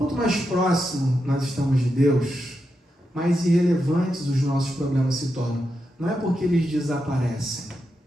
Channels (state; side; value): normal; both; correlation 0.86